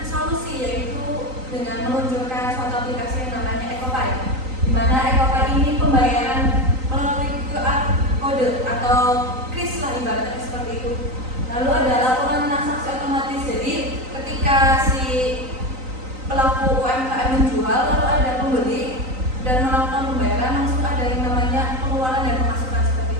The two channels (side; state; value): left; late; 3.9 ms